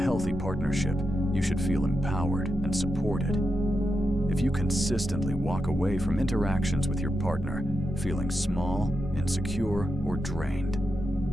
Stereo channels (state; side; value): normal; both; correlation 0.87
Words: partnership, you should feel empowered and supported. If you consistently walk away from interactions with your partner feeling small, insecure, or drained,